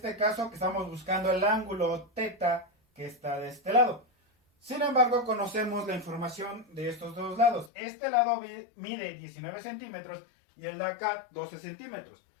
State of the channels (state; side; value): drops out; right; at 7.7 s